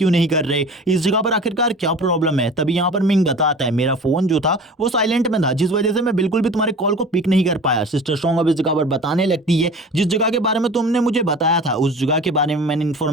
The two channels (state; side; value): normal; both; correlation 0.39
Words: नहीं कर रहे, इस जगह पर आखिरकार क्या प्रॉब्लम है। तभी यहाँ पर मिंग बताता है मेरा फोन जो था वो साइलेंट में था जिस वजह से मैं बिल्कुल भी तुम्हारे कॉल को पिक नहीं कर पाया। सिस्टर सॉन्ग अब इस जगह पर बताने लगती है जिस जगह के बारे में तुमने मुझे बताया था उस जगह के बारे में मैंने